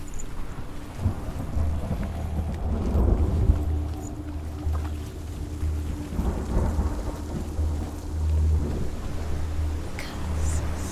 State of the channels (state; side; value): identical; both; correlation 1.00